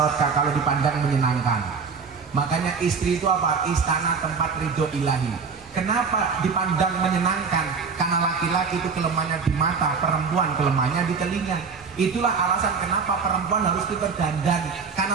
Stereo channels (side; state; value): left; quieter; 5.4 dB